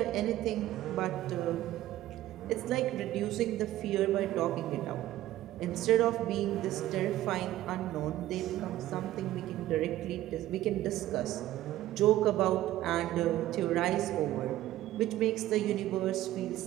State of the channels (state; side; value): quieter; left; 14.6 dB